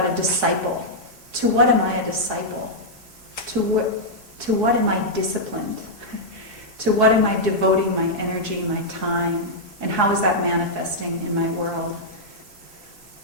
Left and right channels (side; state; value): both; normal; correlation -0.08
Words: a disciple. To what am I a disciple? To what am I disciplined? To what am I devoting my energy, my time? And how is that manifesting in my world?